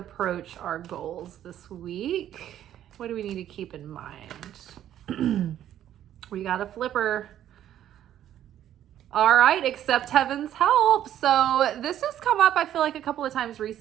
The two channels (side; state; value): left; quieter; 11.4 dB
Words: our goals this week. What do we need to keep in mind? We got a flipper. All right, accept heaven's help. So this has come up, I feel like, a couple of times